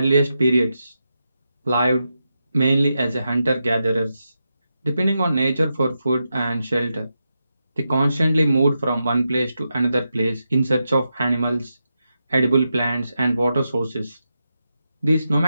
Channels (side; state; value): both; inverted; correlation -0.87